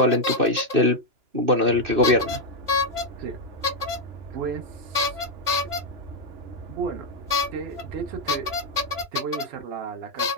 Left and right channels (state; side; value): late; left; 2.9 ms